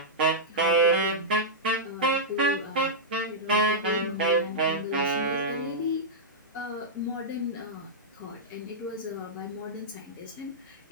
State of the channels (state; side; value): normal; both; correlation -0.11